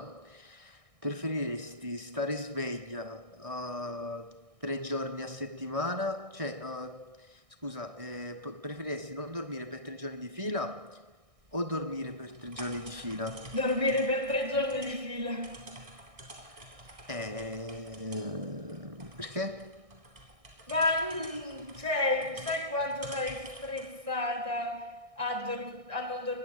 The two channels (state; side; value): late; left; 1.6 ms